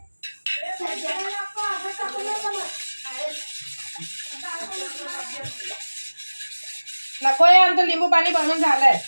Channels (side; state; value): both; inverted; correlation -1.00